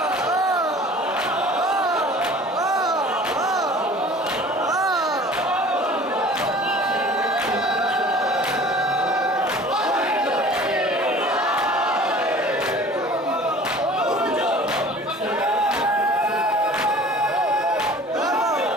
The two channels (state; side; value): normal; both; correlation 0.46